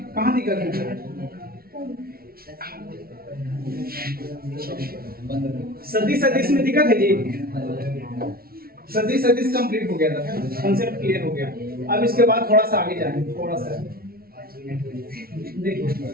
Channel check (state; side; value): late; left; 0.44 ms